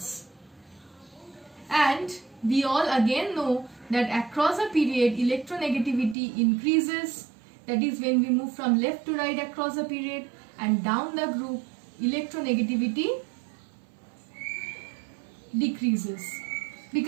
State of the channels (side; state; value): left; drops out; at 6.2 s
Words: And we all again know that across a period electronegativity increases, that is when we move from left to right across a period, and down the group electronegativity decreases.